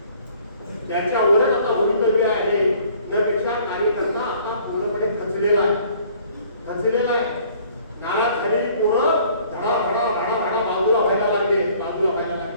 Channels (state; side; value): inverted; both; correlation -0.56